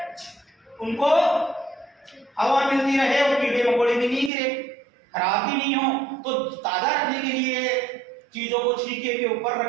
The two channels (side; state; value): left; drops out; at 4.3 s